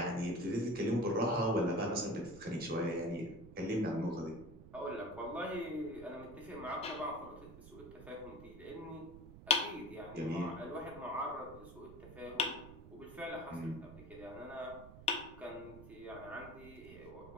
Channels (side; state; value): right; noise; rumble, 15 dB below the sound